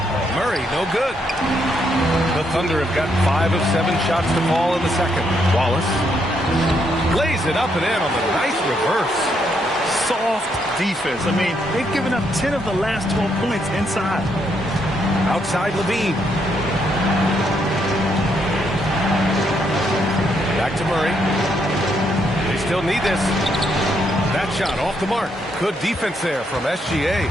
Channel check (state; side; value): normal; both; correlation 0.75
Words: Murray, no good. The Thunder have got 5 of 7 shots to fall in the second. Wallace lays it up and in on the nice reverse. Soft defense. I mean, they've given up 10 of the last 12 points inside. Outside LaVine. Back to Murray. They still need this. That shot off the mark. Good defense there from SGA.